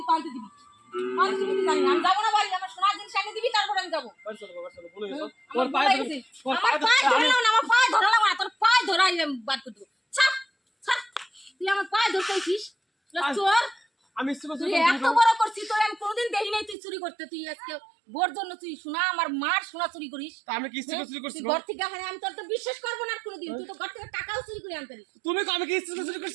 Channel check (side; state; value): left; drops out; at 16.8 s